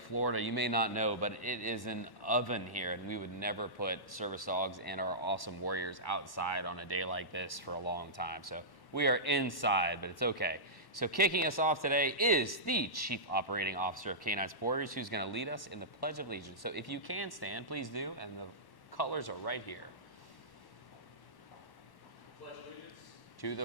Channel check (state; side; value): late; right; 1.1 ms